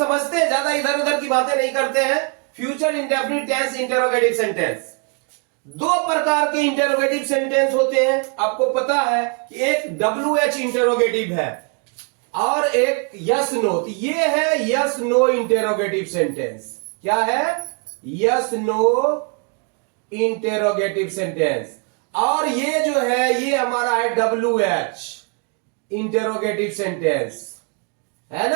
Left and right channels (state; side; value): quieter; left; 36.9 dB